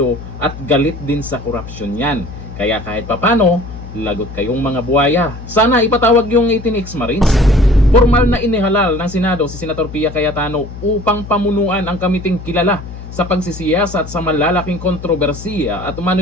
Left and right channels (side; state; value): left; noise; hum, 12 dB below the sound